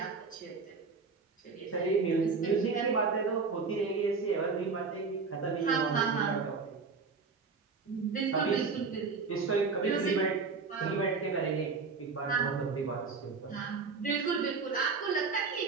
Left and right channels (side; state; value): left; quieter; 4.7 dB